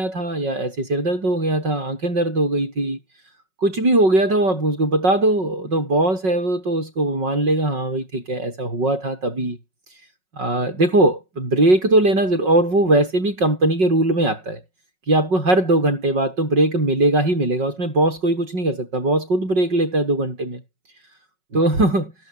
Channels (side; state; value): left; late; 5.4 ms